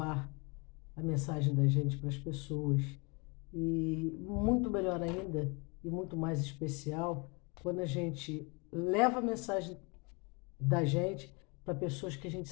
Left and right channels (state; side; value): quieter; right; 30.5 dB